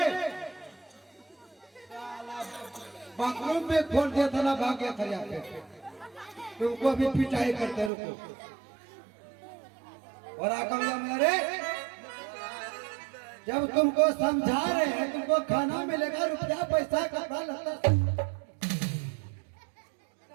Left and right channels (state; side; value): drops out; left; at 7.9 s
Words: बाथरूम में खोल दिया था ना, भाग गया था यहाँ पे। तुमको अभी पिटाई करते रुको। और आकर मेरे जब तुमको समझा रहे हैं तुमको खाना मिलेगा, रुपया पैसा कपड़ा लगता।